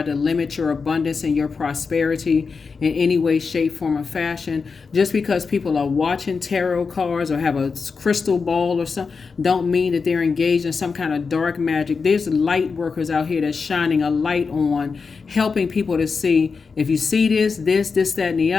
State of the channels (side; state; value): right; quieter; 5.0 dB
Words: to limit your abundance and your prosperity in any way, shape, form, or fashion. Just because people are watching tarot cards or have a crystal ball or something, don't mean that they're engaged in some kind of dark magic. There's light workers out here that's shining a light on, helping people to see, if you see this, that, and the